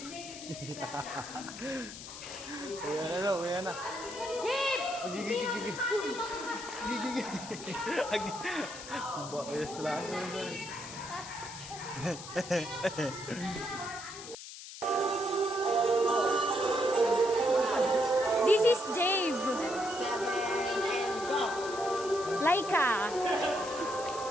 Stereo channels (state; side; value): noise; left; hiss, 12 dB below the sound